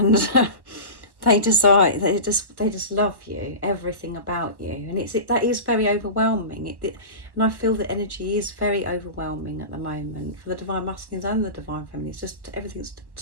they just love you, everything about you. And that is very overwhelming. And I feel the energy is very overwhelming at the moment for the divine masculines and the divine feminine. It's just, everything's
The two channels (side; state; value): left; late; 1.1 ms